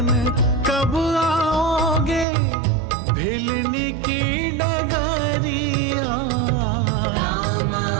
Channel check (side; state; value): left; drops out; at 2.2 s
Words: कब आओगे, भिलनी की डगरिया। रामा